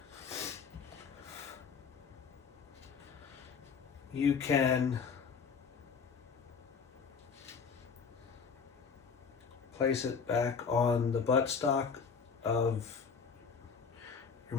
you can place it back on the buttstock of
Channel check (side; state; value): right; quieter; 5.8 dB